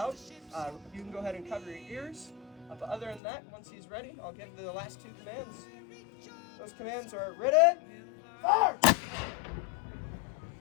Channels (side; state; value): right; drops out; at 3.2 s